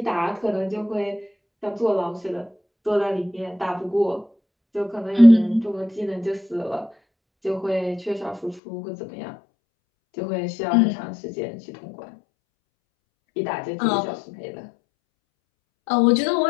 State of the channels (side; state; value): right; drops out; at 8.6 s